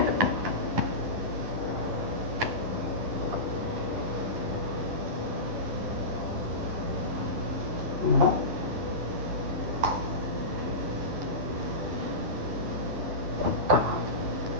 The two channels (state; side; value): late; left; 11 ms